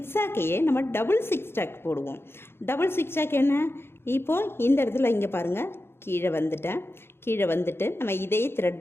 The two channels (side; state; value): right; late; 0.11 ms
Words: நம்ம டபுள் zigzag போடுவோம். டபுள் zigzag என்ன, இப்போது இந்த இடத்துல இங்கே பாருங்கள் கீழே வந்துட்டேன். கீழே வந்துட்டு நம்ம இதே